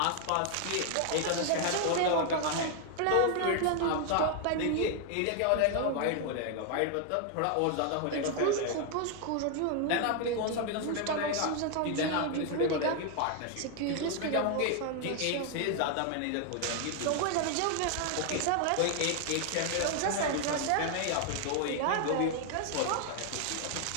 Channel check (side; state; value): both; different; correlation 0.00